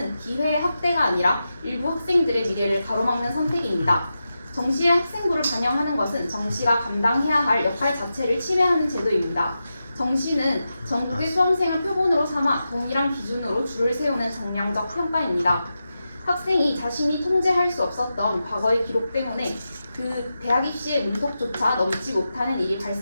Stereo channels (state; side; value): inverted; both; correlation -0.90